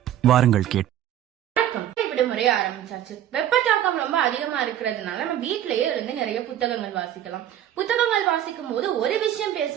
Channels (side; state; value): left; quieter; 11.4 dB